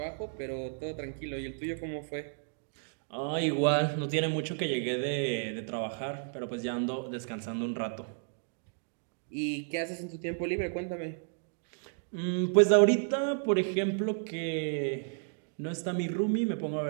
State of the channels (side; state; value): left; silent; digital silence